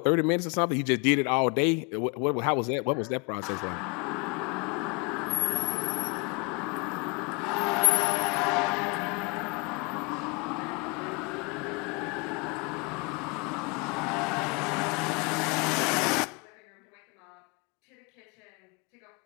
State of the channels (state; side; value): quieter; right; 30.2 dB